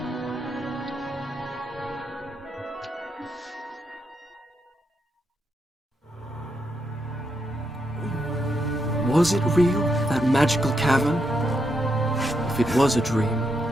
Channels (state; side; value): normal; both; correlation 0.81